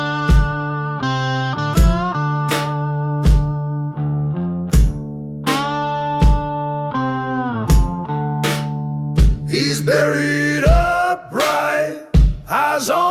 He's buried upright, eyes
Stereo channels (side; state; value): both; identical; correlation 1.00